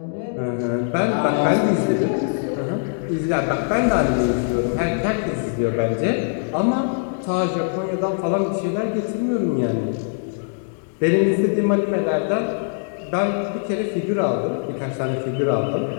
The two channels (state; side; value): silent; right; digital silence